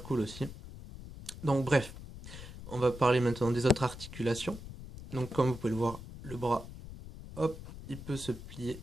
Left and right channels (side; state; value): left; noise; rumble, 13 dB below the sound